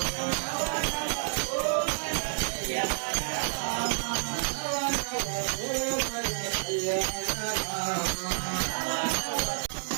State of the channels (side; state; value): left; silent; 58 dB below the other